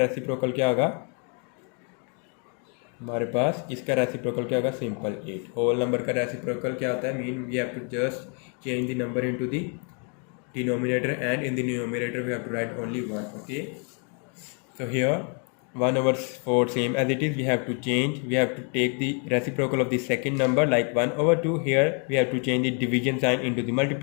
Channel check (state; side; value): quieter; right; 39.1 dB